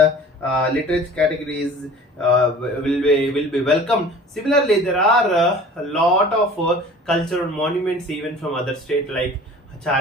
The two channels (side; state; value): both; normal; correlation 0.44